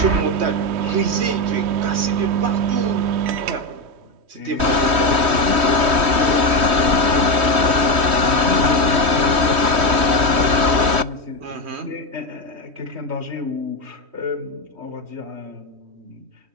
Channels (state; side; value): late; left; 3.1 ms